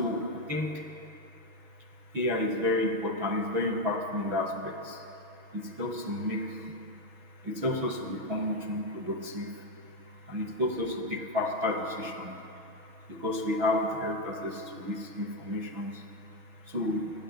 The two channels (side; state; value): left; late; 6.3 ms